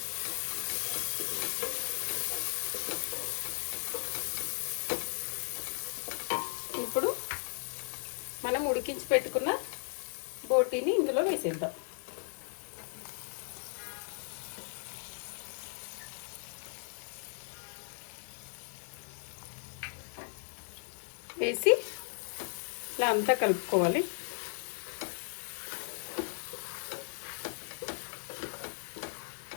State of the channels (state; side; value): silent; right; digital silence